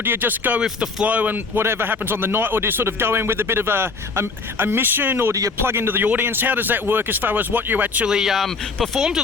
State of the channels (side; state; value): right; quieter; 4.3 dB